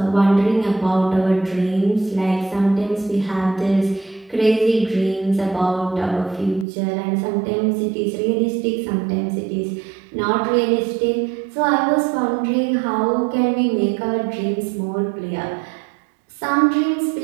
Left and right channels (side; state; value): left; drops out; at 6.7 s